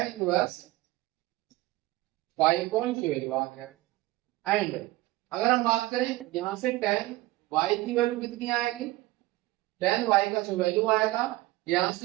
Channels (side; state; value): left; quieter; 18.8 dB